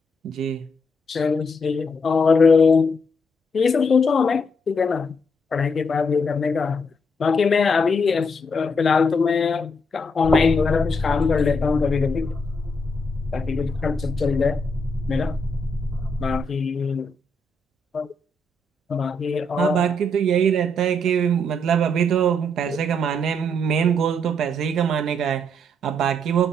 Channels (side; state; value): both; normal; correlation 0.77